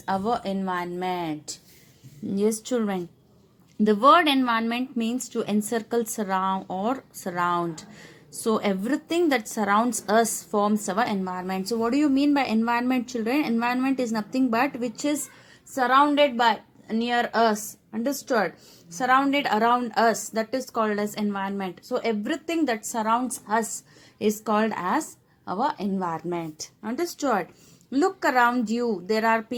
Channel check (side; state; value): both; identical; correlation 1.00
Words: our environment. Yes, children. The word environment means to encircle, surround, or surround. So, everything that surrounds us forms our environment. So, what do you mean by environment, children? Environment is nothing but which is surrounded by near us. Understood? Surrounded around us. That is called as environment. So, everything that surrounds us is called as our environment. Understood? Look around you. There are